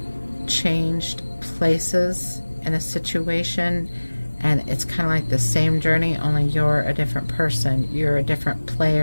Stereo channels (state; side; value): inverted; both; correlation -1.00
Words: changed places in a situation, and it's kind of like the same journey, only you're a different person, you're a different